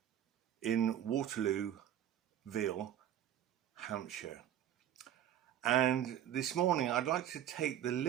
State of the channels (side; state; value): left; quieter; 10.9 dB